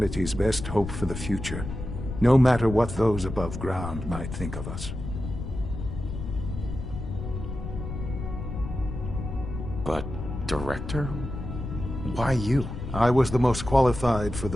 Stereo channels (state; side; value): noise; left; rumble, 7 dB below the sound